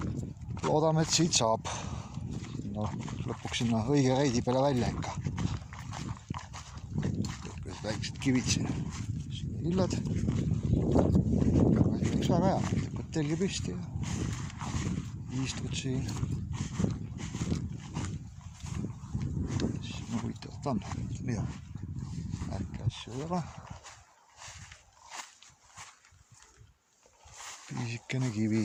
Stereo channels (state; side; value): identical; both; correlation 1.00